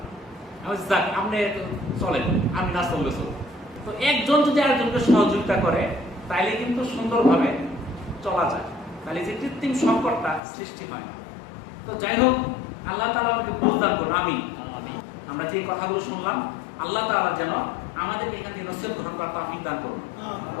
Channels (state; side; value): drops out; right; at 10.4 s